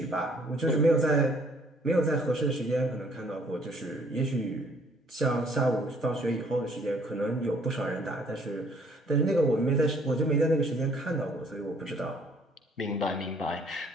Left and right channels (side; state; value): both; normal; correlation 0.61